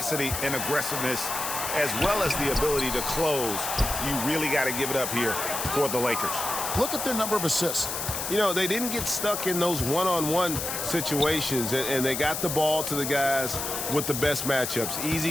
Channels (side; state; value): left; noise; hiss, 4 dB below the sound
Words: and aggressiveness as well as the ability to close. You really got to give it up here for the Lakers. Look at their number of assists. You know, they didn't get stuck in those one-on-one situations, and they got the ball to the guys with the best matchups.